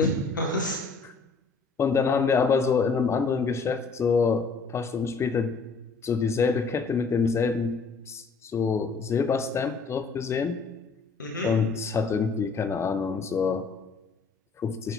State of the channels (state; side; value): quieter; right; 4.6 dB